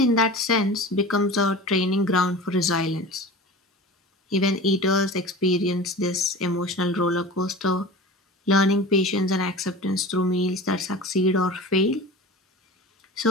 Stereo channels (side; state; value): both; normal; correlation 0.35